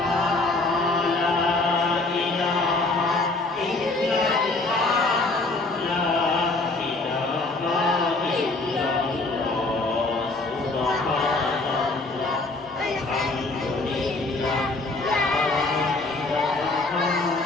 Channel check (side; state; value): right; quieter; 3.2 dB